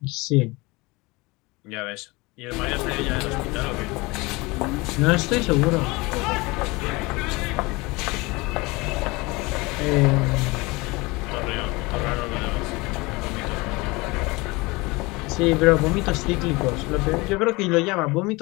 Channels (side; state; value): right; quieter; 24.0 dB